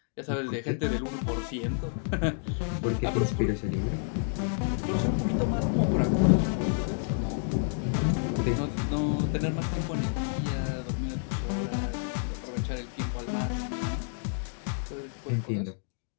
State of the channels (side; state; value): right; silent; digital silence